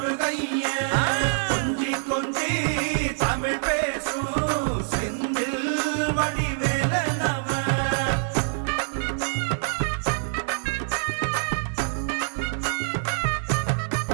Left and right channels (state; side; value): silent; left; digital silence